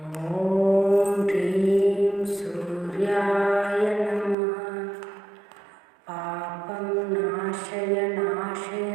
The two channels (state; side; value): drops out; left; at 4.4 s